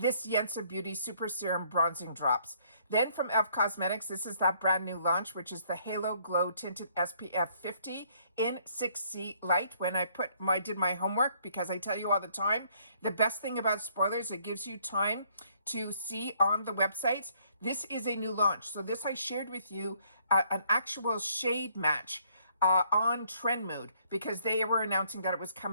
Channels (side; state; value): both; inverted; correlation -0.65